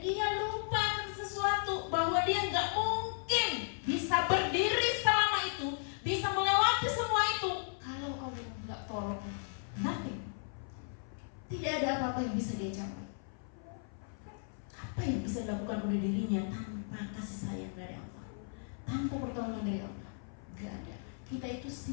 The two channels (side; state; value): right; silent; 54 dB below the other